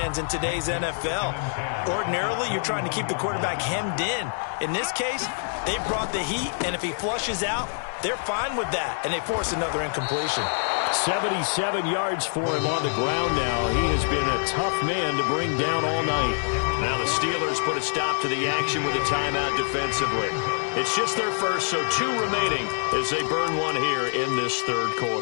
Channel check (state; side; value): silent; right; digital silence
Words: in today's NFL. Ordinarily, you're trying to keep the quarterback hemmed in. In this case, they brought the heat, and if he flushes out, they're fine with that, and they force another incompletion. 77 yards for him on the ground now. He has been a tough man to bring down all night. Now the Steelers put a stop to the action with a timeout defensively. It's just their first, so 2 remaining as they burn one here in this third